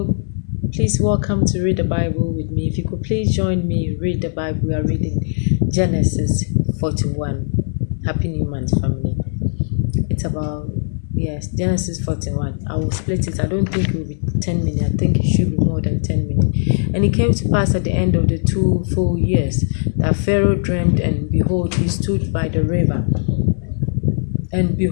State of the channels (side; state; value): right; silent; 67 dB below the other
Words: please welcome to Read the Bible with me. If you could please join me, read the Bible. We are reading Genesis 41. Happy New Month, family. It's about, yes, Genesis 41. I will split it. I don't think it will be 10 minutes. I think it should be more than 10 minutes. And it came to pass at the end of the 2 full years that Pharaoh dreamed, and behold, he stood by the river. And